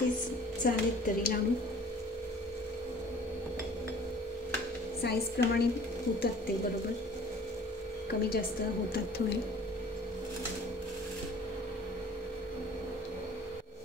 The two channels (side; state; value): both; normal; correlation 0.49